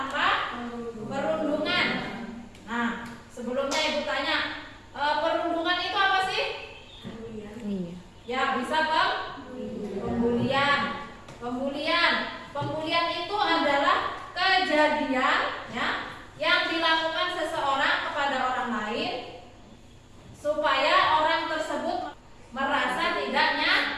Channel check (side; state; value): both; identical; correlation 1.00